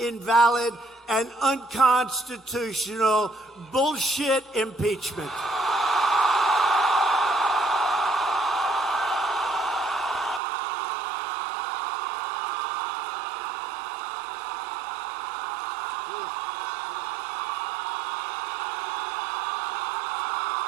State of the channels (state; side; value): drops out; left; at 10.4 s